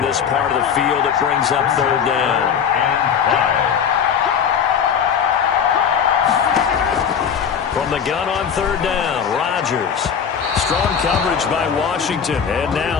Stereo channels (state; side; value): quieter; right; 7.4 dB